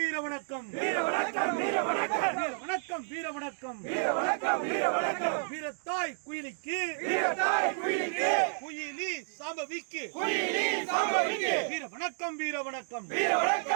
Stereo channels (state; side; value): silent; left; digital silence